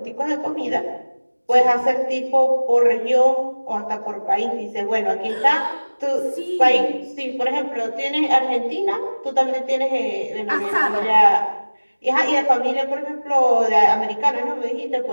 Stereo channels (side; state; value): both; inverted; correlation -1.00